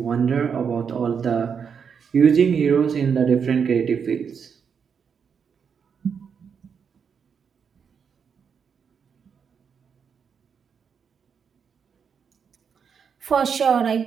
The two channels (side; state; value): left; quieter; 6.7 dB